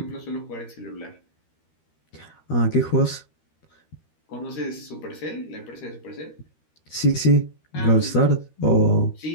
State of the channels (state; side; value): late; right; 13 ms